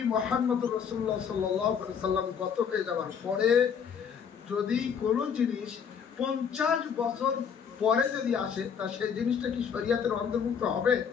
মুহাম্মদ রাসূলুল্লাহ সাল্লাল্লাহু আলাইহি সাল্লাম গত হয়ে যাওয়ার পরে যদি কোনো জিনিস 50 বছর পরে যদি আসে তা সেই জিনিসটা কি শরীয়তের অন্তর্ভুক্ত হবে?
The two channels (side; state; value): right; quieter; 7.1 dB